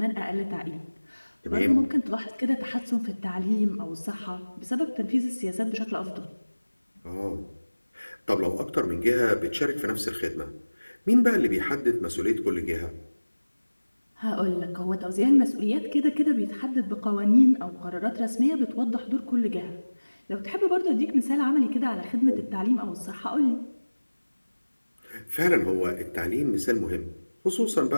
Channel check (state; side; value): inverted; both; correlation -1.00